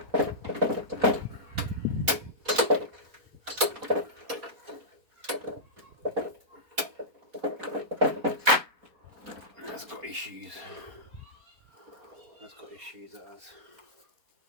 That's got issues. That's got issues, it has.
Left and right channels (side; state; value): left; late; 4.3 ms